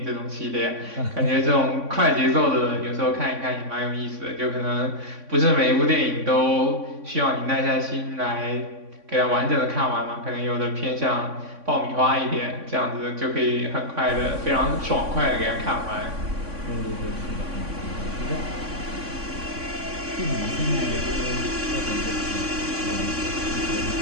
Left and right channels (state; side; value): late; left; 3.6 ms